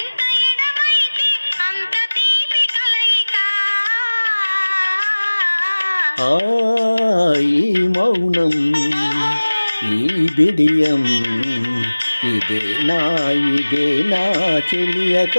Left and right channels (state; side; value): inverted; both; correlation -1.00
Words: ఈ మౌనం ఈ బిడియం ఇదే నా చెలియ